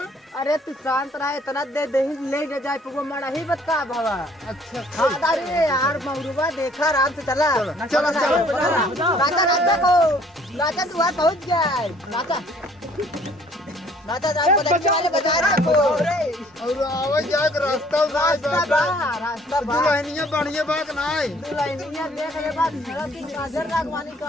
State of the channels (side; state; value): both; normal; correlation 0.58